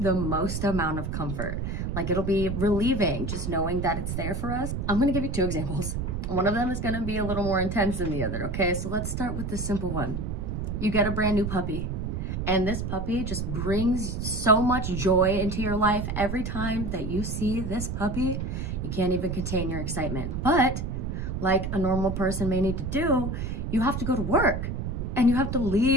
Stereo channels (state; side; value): noise; right; rumble, 3 dB below the sound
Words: most amount of comfort? Like, it'll be relieving just knowing that it's there for us. I'm gonna give you two examples. One of them is gonna be a little more intense than the other, okay? So let's start with the simple one. You get a brand new puppy, and this puppy just brings so much joy into your life. Every time that you see this puppy, you can't even contain your excitement. But like a normal person may need to do, you have to go to work and you have to